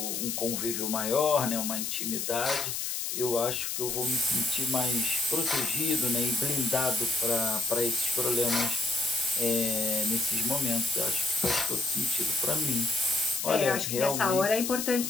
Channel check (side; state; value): left; noise; hiss, 2 dB below the sound